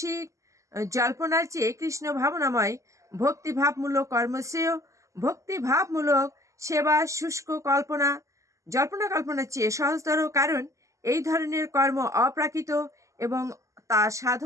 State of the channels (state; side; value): late; left; 0.15 ms